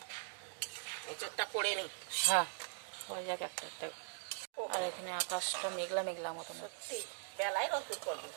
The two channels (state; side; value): silent; left; digital silence